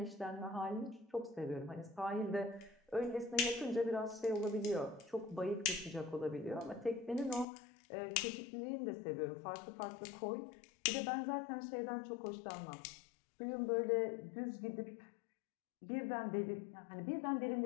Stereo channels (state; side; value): drops out; right; at 7.5 s